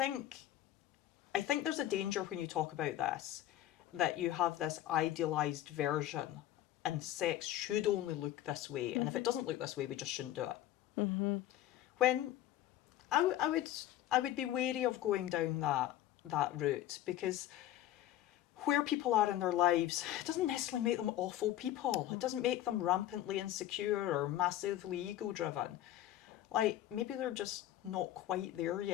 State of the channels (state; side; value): quieter; right; 13.1 dB